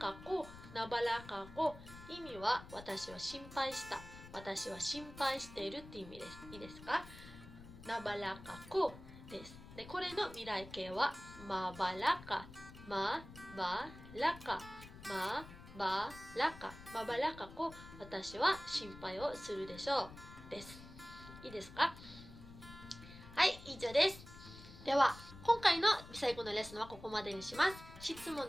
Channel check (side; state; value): left; noise; rumble, 16 dB below the sound